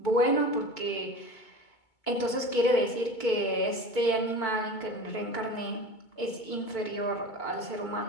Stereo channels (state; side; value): late; right; 2.2 ms